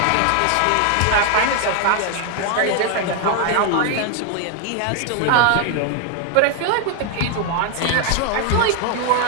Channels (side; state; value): both; different; correlation 0.01